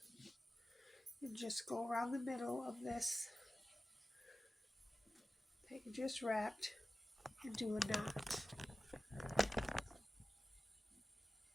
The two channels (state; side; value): normal; both; correlation 0.95